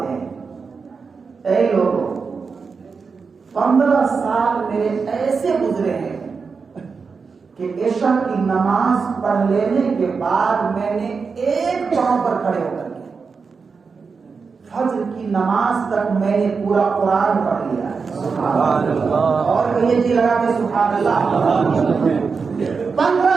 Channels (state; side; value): quieter; left; 5.1 dB